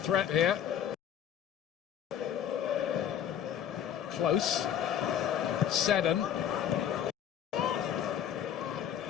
here. Close. Seddon.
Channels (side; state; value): right; quieter; 9.6 dB